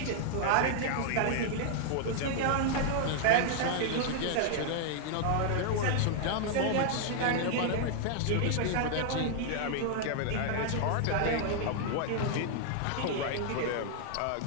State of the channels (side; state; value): both; different; correlation 0.00